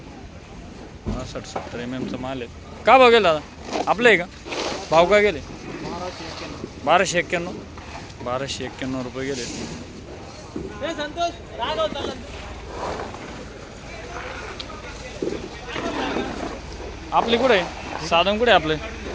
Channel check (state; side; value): identical; both; correlation 1.00